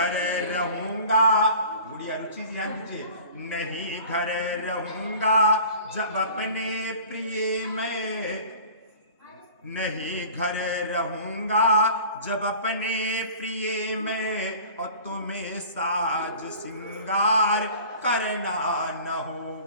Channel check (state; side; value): inverted; both; correlation -0.43